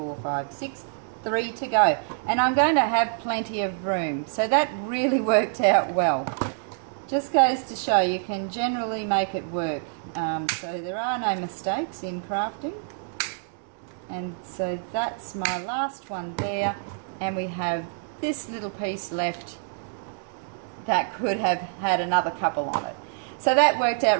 5, 6. 3 to go. And I'm going to have plenty of room. So that really worked out well. Just goes to show you can generally make it work. So there are no mistakes in crafting. And so that's my last one there. And we have this little piece left that could have had another couple on it. So that worked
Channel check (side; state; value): left; silent; digital silence